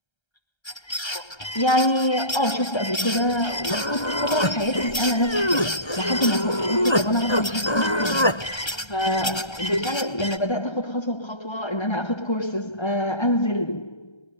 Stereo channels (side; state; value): right; late; 1.3 ms